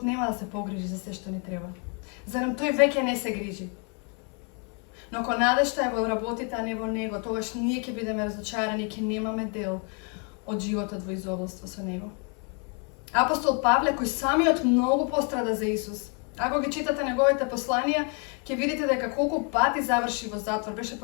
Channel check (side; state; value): right; quieter; 37.5 dB